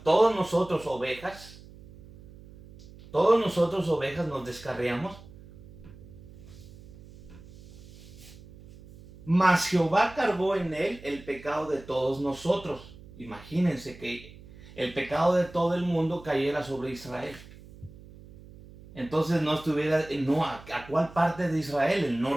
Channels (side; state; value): right; noise; hum, 19 dB below the sound